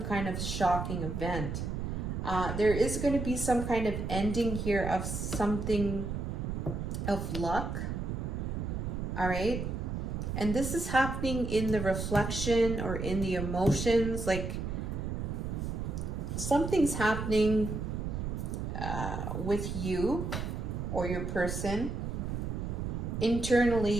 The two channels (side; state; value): right; noise; rumble, 3 dB below the sound